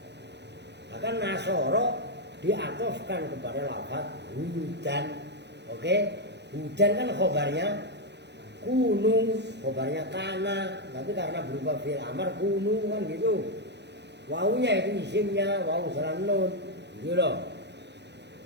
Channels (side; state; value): left; late; 0.50 ms